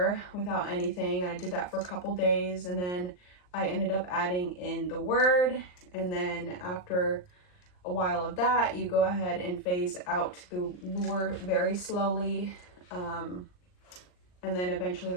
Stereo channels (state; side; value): late; right; 39 ms